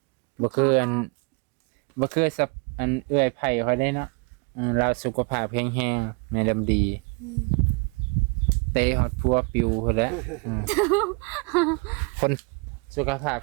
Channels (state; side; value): quieter; left; 31.6 dB